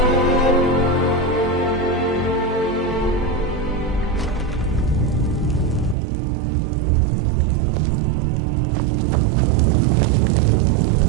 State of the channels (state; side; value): drops out; left; at 6.0 s